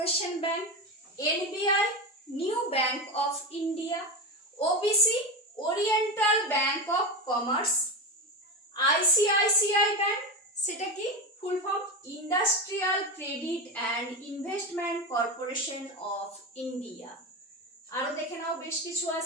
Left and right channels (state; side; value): normal; both; correlation 0.19